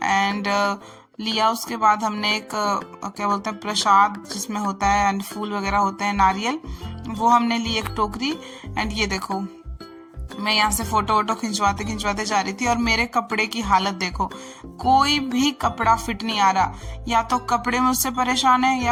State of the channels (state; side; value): identical; both; correlation 1.00